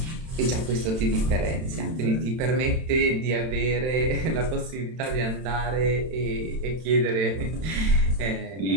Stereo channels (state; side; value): late; left; 31 ms